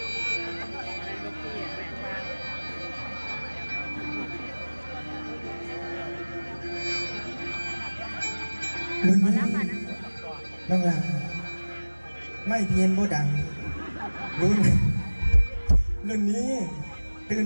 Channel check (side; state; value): both; inverted; correlation -1.00